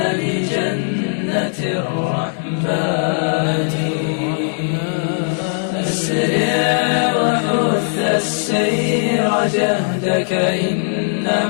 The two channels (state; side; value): silent; right; digital silence